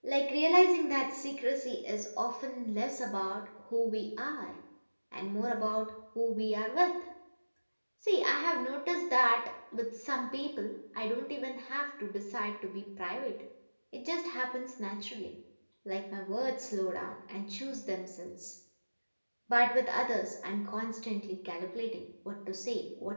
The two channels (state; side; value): inverted; both; correlation -1.00